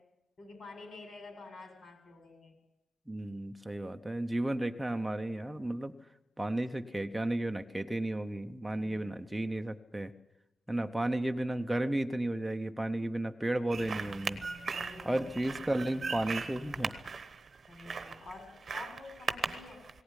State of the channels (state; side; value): normal; both; correlation 0.97